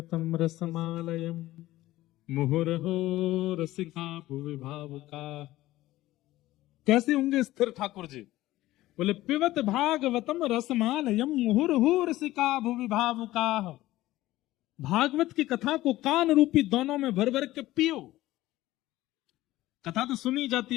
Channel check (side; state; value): right; quieter; 16.4 dB